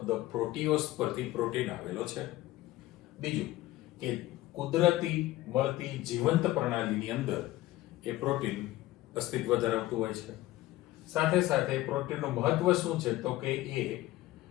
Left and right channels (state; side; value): quieter; right; 16.6 dB